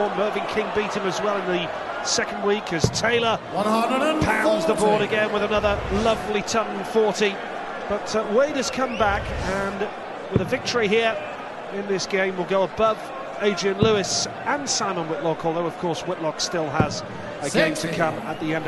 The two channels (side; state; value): both; identical; correlation 1.00